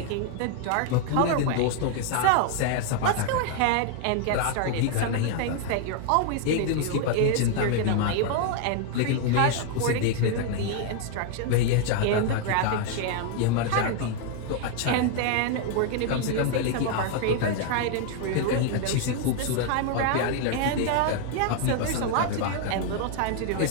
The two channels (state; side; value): different; both; correlation 0.00